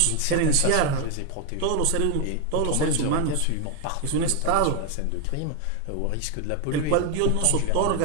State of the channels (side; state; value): both; different; correlation 0.01